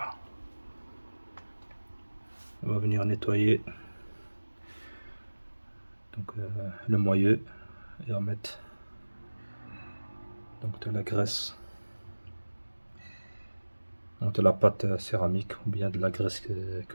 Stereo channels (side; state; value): both; inverted; correlation -1.00